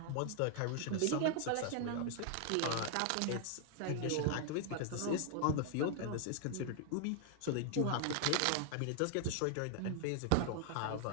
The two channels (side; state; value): both; different; correlation 0.00